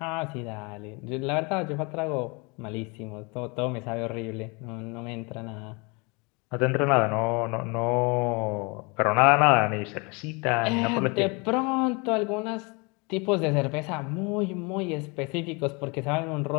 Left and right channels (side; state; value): right; quieter; 29.3 dB